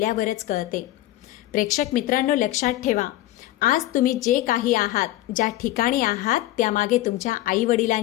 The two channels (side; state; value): right; quieter; 15.4 dB